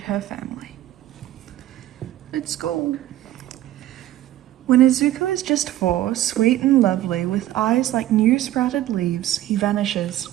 her family. Let's go. When Izuku is just 4, sweet and lovely, with eyes like new sprouted leaves, he vanishes.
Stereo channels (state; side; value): quieter; left; 13.7 dB